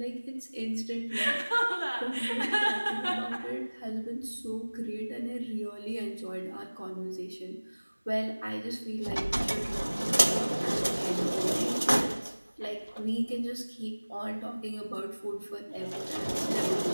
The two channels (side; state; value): both; inverted; correlation -1.00